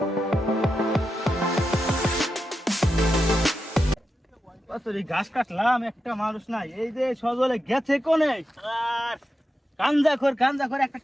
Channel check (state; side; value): normal; both; correlation 0.89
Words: ঘাস কাটলাম একটা মানুষ নাই এই যে সজলে গেছে কোনে আর গাঞ্জা খোর একটা